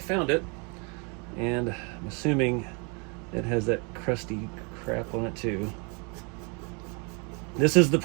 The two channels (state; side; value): quieter; left; 33.1 dB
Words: it, and I'm assuming it has that crusty crap on it too. This is the